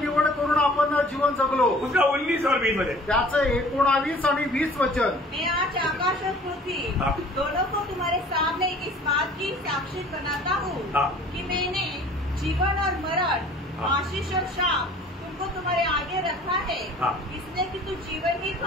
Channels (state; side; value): normal; both; correlation 0.50